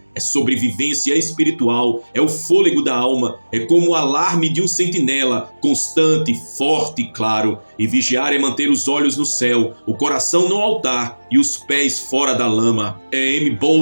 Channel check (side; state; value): both; inverted; correlation -1.00